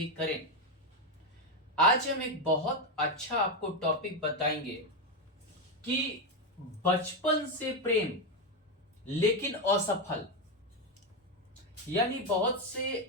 करें। आज हम एक बहुत अच्छा आपको टॉपिक बताएंगे कि बचपन से प्रेम लेकिन असफल। यानी बहुत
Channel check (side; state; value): both; normal; correlation 0.08